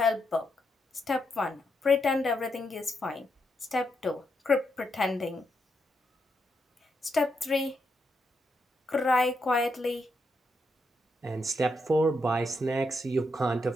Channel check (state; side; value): normal; both; correlation 0.81